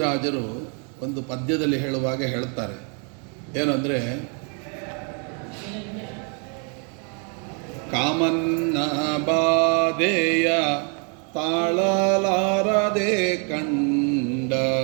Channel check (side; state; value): left; quieter; 39.2 dB